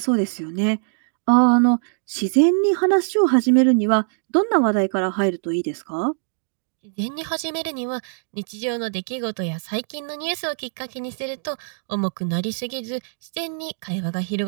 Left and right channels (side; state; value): left; silent; digital silence